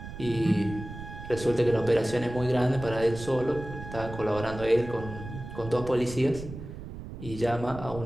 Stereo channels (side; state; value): right; noise; rumble, 11 dB below the sound